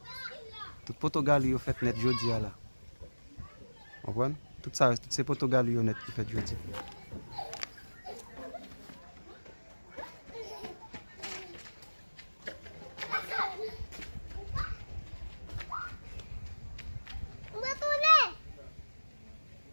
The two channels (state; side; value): inverted; both; correlation -1.00